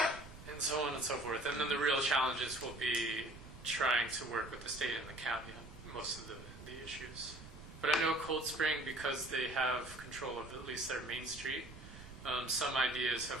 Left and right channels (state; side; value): noise; right; rumble, 16 dB below the sound